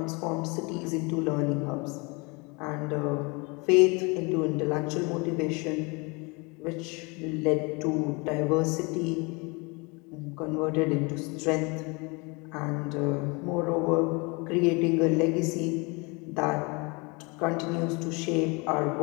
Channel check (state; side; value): quieter; right; 29.0 dB